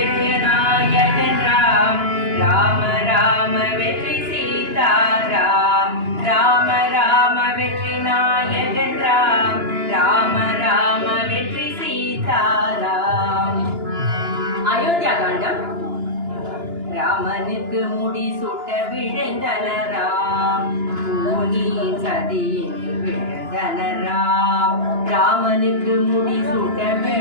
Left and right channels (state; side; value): late; left; 2.9 ms